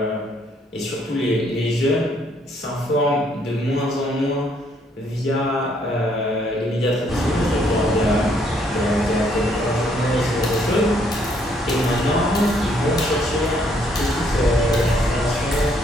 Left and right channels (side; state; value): both; normal; correlation 0.68